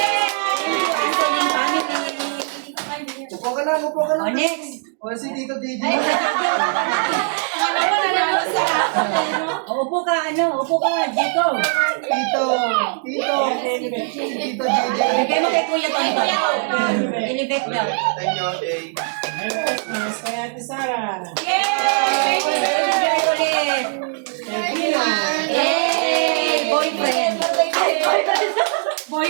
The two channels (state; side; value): silent; left; 65 dB below the other